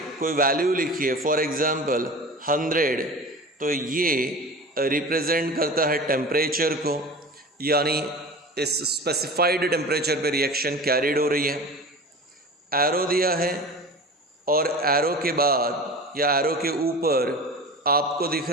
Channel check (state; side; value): normal; both; correlation 0.35